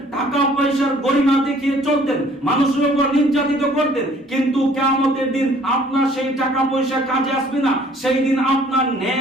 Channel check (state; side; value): normal; both; correlation 0.57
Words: টাকা পয়সার গরিমা দেখিয়ে চলতেন, মানুষের উপর নির্যাতিত করতেন। কিন্তু কিয়ামতের দিন আপনার সেই টাকা পয়সা কাজে আসবে না। সেই দিন আপনার